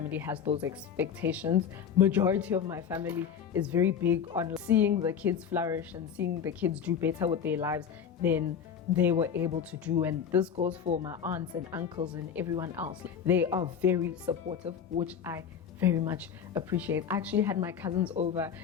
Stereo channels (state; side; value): quieter; right; 7.7 dB